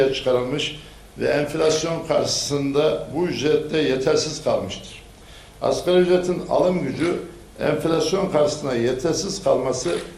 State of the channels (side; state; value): both; identical; correlation 1.00